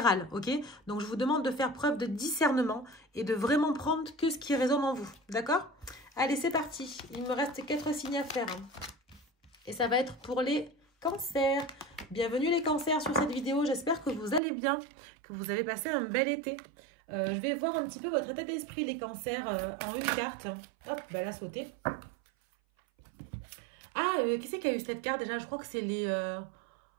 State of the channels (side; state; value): left; drops out; at 14.4 s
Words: ok? Donc je vous demande de faire preuve de discernement et de vraiment prendre que ce qui résonne en vous, d'accord? Allez, c'est parti. Il me reste 4 signes à faire. Et ça va être pour les cancers. Bienvenue les cancers sur cette vidéo. J'espère que vous allez bien, que vous avez passé un bel été. Je vais voir un petit peu votre état d'esprit, les cancers, en une carte. Hop, bah, elle a sauté. Ah, qui c'est qui a eu cette carte déjà? Je crois que c'est